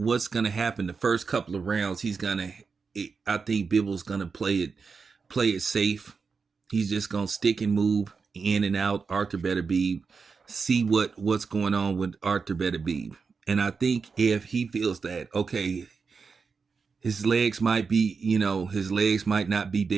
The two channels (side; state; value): left; quieter; 5.2 dB